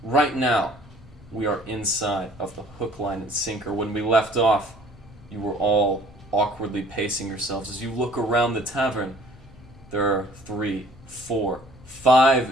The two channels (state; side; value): normal; both; correlation 0.55